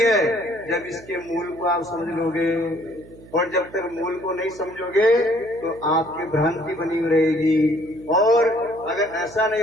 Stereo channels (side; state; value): right; noise; hum, 21 dB below the sound